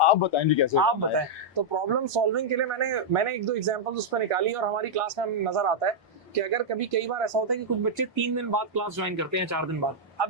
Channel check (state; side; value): normal; both; correlation -0.05